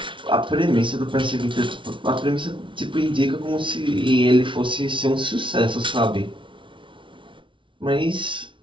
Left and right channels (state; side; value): late; left; 0.24 ms